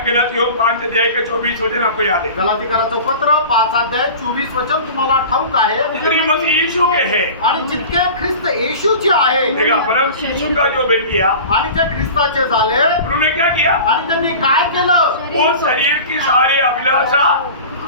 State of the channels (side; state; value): both; inverted; correlation -0.37